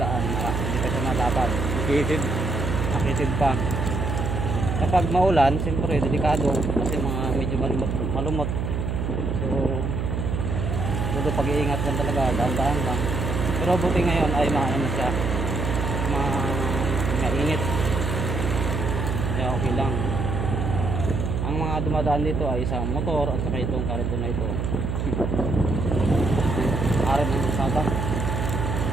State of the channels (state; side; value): noise; right; hum, 1 dB below the sound